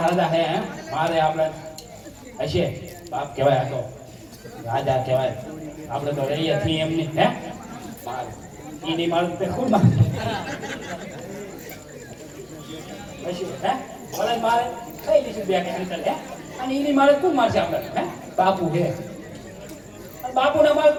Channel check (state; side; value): identical; both; correlation 1.00